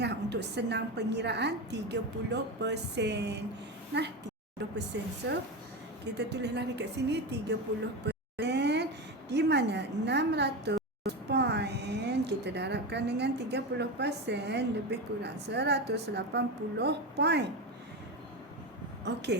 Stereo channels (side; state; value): both; normal; correlation 0.19